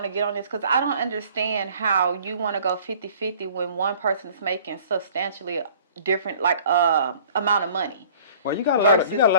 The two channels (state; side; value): inverted; both; correlation -0.51